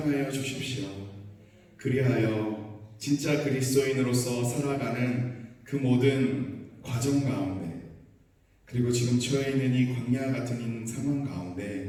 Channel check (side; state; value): both; identical; correlation 1.00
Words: 주십시오. 그리하여 진짜 그리스도인으로서 살아가는 그 모든 과정 가운데 그리고 지금 처해 있는 이 광야 같은 상황